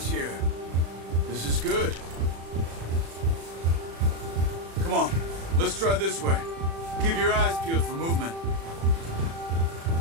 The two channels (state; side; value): late; left; 36 ms